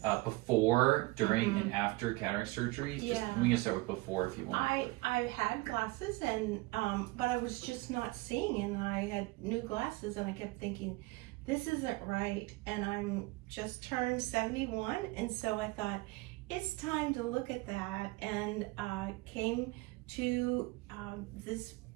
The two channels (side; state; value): left; quieter; 22.1 dB